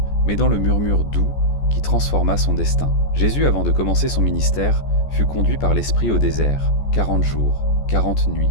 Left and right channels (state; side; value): late; right; 14 ms